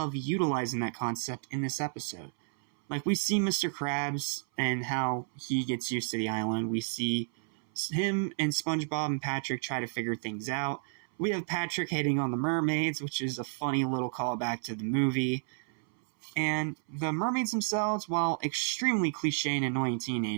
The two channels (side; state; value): left; silent; 57 dB below the other